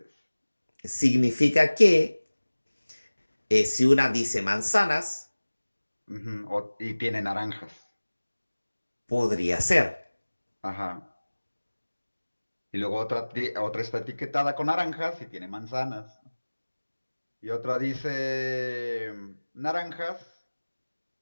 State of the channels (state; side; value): inverted; both; correlation -1.00